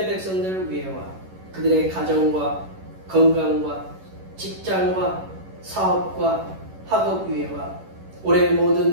백성들을 위해와 그들의 가정과 건강과 직장과 사업과 학업 위해와 올해의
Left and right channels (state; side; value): late; left; 11 ms